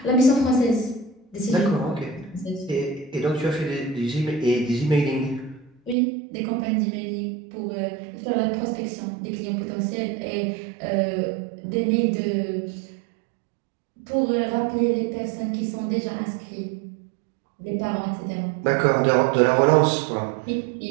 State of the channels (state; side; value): drops out; left; at 6.0 s